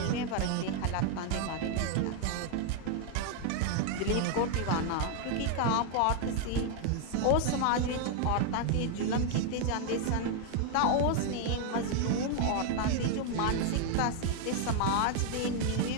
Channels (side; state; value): both; different; correlation 0.00